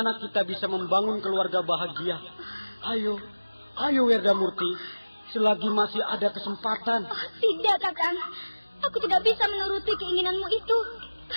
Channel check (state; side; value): inverted; both; correlation -1.00